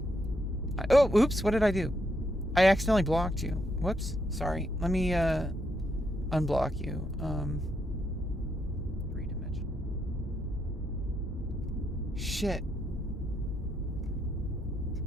Oh, oops, what did I do? I accidentally blocked you. Whoops, sorry. Let me unblock you. Three-dimensional. Shit.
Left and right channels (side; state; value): both; normal; correlation 0.78